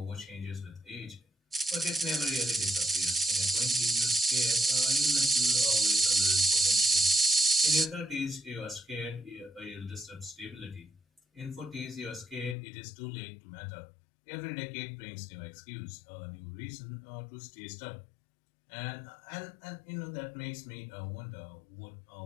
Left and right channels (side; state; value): right; drops out; at 12.6 s